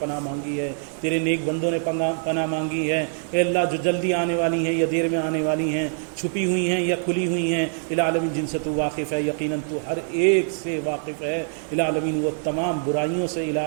مانگی ہے، تیرے نیک بندوں نے پناہ مانگی ہے، اے اللہ جو جلدی آنے والی ہیں یا دیر میں آنے والی ہیں، چھپی ہوئی ہیں یا کھلی ہوئی ہیں العالمین جن سے تو واقف ہے، یقیناً تو ہر ایک سے واقف ہے العالمین، وہ تمام برائیوں سے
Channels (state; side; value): silent; left; 62 dB below the other